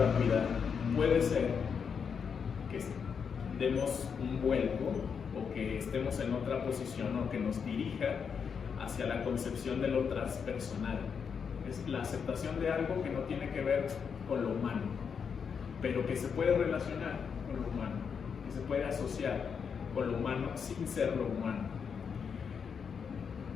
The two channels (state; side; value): quieter; right; 6.5 dB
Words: puede ser que demos un vuelco o que estemos en otra posición o que nos dirija hacia la concepción de lo transpersonal. es la aceptación de algo que no tiene que ver con lo humano, pero que se puede relacionar con lo humano, que se puede asociar con lo humano sin ser lo humano.